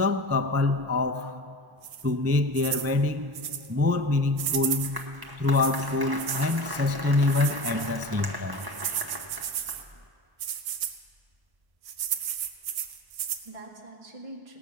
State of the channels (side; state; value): left; late; 1.1 ms